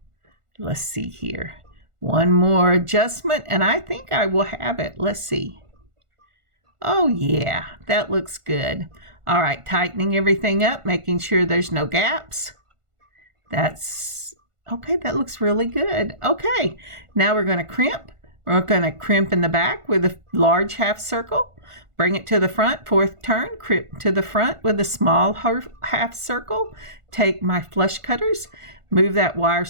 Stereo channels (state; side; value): late; left; 1.4 ms